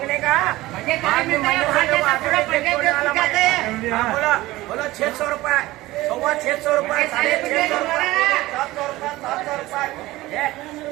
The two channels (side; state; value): left; quieter; 18.2 dB